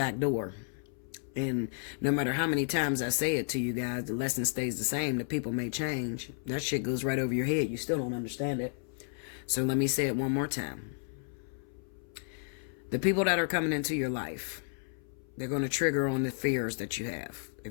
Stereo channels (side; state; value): right; silent; 56 dB below the other